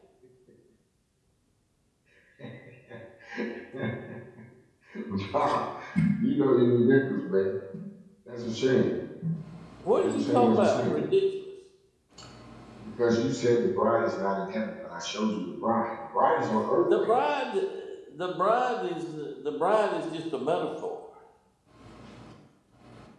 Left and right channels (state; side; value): identical; both; correlation 1.00